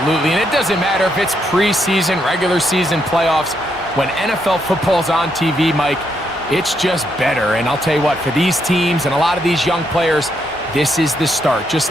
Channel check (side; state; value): both; normal; correlation 0.77